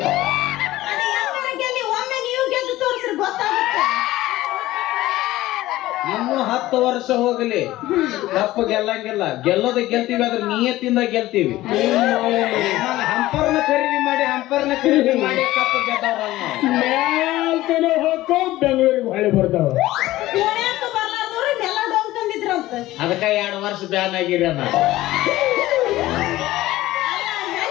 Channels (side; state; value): right; quieter; 16.5 dB